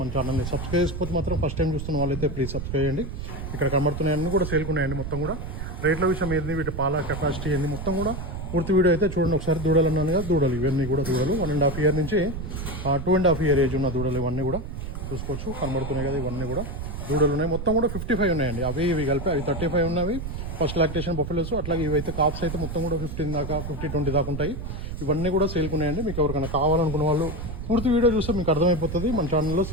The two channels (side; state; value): right; noise; rumble, 6 dB below the sound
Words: మన ఛానల్ని సబ్స్క్రైబ్ చేసుకోవచ్చు. మాత్రం ఫస్ట్ టైం చూస్తున్న వాళ్ళైతే ప్లీజ్ సబ్స్క్రైబ్ చేయండి. ఇక్కడ కనబడుతున్నాయన్నీ కూడా సేల్కున్నాయండి. మొత్తం కూడా రేట్ల విషయం ఏంది, వీటి పాల కెపాసిటీ ఏంది, మొత్తం కూడా పూర్తి వీడియో అయితే చూడండి ఒకసారి. దూడలు అన్నాను కదా, దూడలు ఇవన్నీ కూడా దూడలు 1.5 year నుంచి 2.5 year ఏజ్ ఉన్న దూడలు ఇవన్నీ కూడా చూసుకోవచ్చు. కనబడుతున్నాయి కదా, ఇవన్నీ కూడా దూడలు ఉన్నాయి. మొత్తం కూడా 55 ఉన్నాయండి. అవి ఇవి కలిపి అవి 35 ఉన్నవి ఫస్ట్ లాక్టేషన్ బఫెలోస్. అట్లాగే ఇవైతే కాప్స్ అయితే మొత్తం కూడా 15 దాకా 50-20 దాకా ఉంటాయి. ఇవన్నీ కూడా సేల్కున్నాయండి. మీకు ఎవరికైనా కావాలనుకున్న వాళ్ళు పూర్తి వీడియో చూస్తే మీకు అర్థమైపోతుంది. మన ఛానల్లో